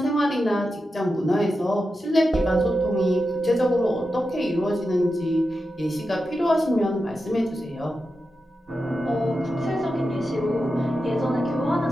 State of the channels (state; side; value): normal; both; correlation 0.90